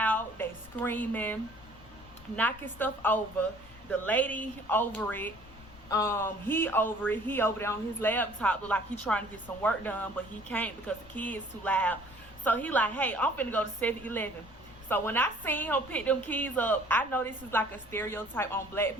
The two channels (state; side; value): noise; left; rumble, 21 dB below the sound